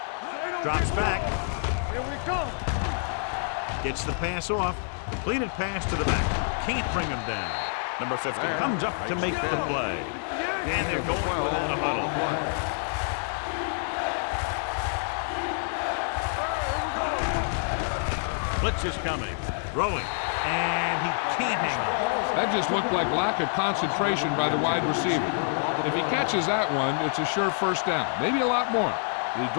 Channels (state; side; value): silent; right; digital silence